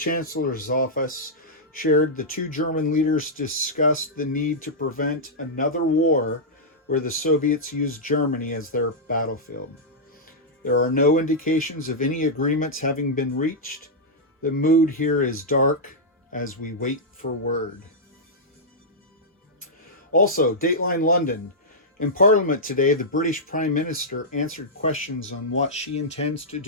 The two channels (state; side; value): normal; both; correlation -0.09